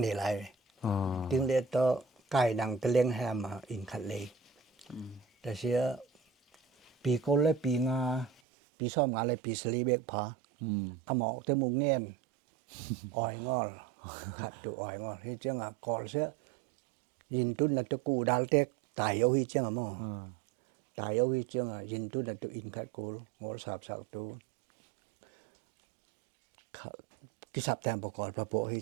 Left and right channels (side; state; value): left; drops out; at 8.4 s